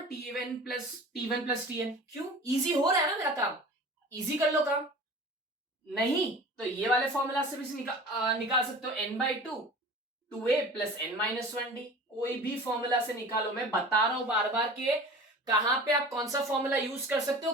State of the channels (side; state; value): both; normal; correlation 0.39